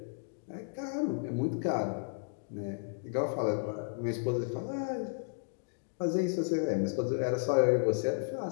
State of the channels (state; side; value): silent; right; digital silence